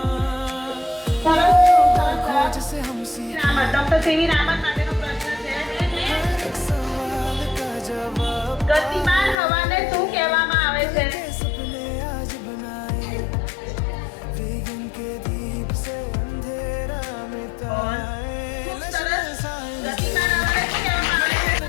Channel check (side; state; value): right; drops out; at 9.3 s